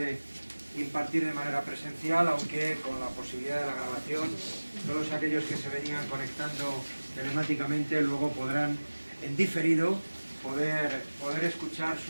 impartir de manera presencial, aunque con la posibilidad de la grabación, todos aquellos que se venían conectando telemáticamente luego podrán, en diferido, poder escuchar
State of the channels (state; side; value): inverted; both; correlation -1.00